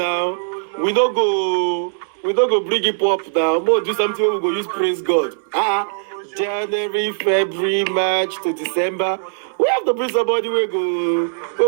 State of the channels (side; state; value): left; silent; digital silence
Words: We don't go bring it up now. More do something we go use praise God. January, February, March to December. We have to bring somebody we